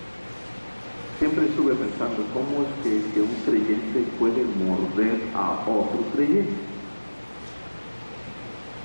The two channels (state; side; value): inverted; both; correlation -1.00